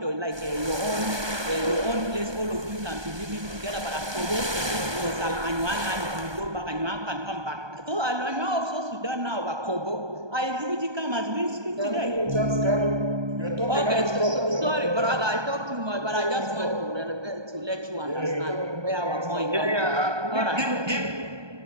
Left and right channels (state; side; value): late; left; 1.2 ms